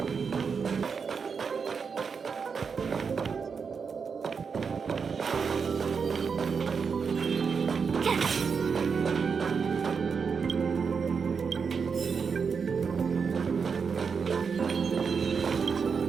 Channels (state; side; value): quieter; left; 5.8 dB